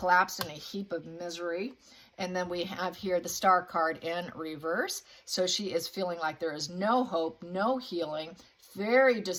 in a heap of misery. And then we have here the Star card in reverse. So she is feeling like there is no hope, no healing, very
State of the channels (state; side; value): identical; both; correlation 1.00